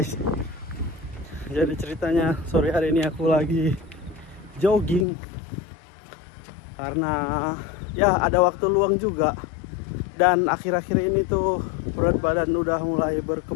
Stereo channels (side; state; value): right; drops out; at 5.1 s